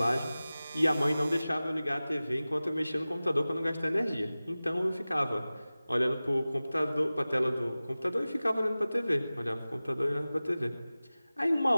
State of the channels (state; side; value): inverted; both; correlation -0.97